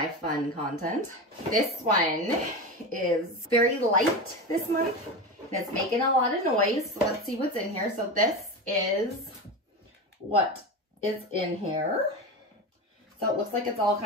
fun content. This one is very light this month and it's making a lot of noise. So let's see what's in here. So this is what is in here. So it looks like it's all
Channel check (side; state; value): both; normal; correlation 0.23